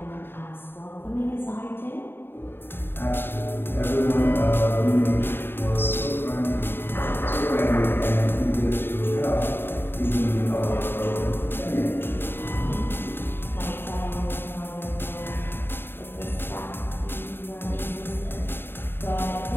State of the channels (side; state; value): right; late; 0.10 ms